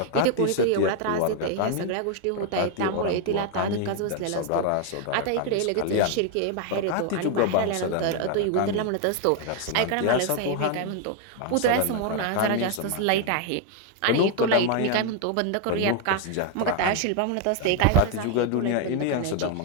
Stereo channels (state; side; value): different; both; correlation 0.01